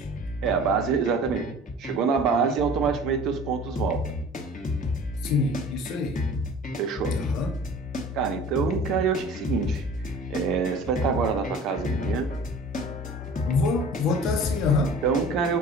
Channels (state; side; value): normal; both; correlation 0.44